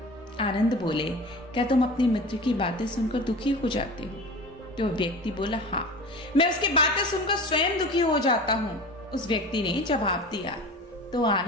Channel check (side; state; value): both; normal; correlation 0.35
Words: आनंद बोले, क्या तुम अपने मित्र की बातें सुनकर दुखी हो जाते हो? तो व्यक्ति बोला, हाँ, मैं उसकी बातें सुनकर स्वयं दुखी हो जाता हूँ। उस व्यक्ति ने जवाब दिया। तो